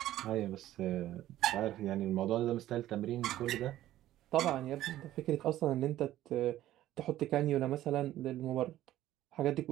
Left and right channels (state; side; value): quieter; left; 13.8 dB